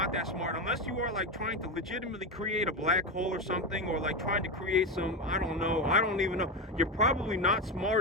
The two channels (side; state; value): both; normal; correlation 0.15